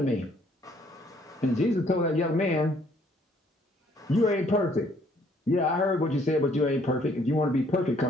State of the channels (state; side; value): normal; both; correlation 0.64